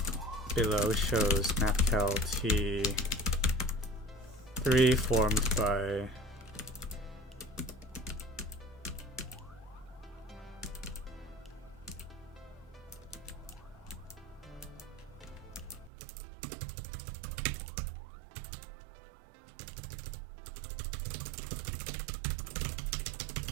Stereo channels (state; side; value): drops out; left; at 15.9 s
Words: below shows MathCal T3 formed by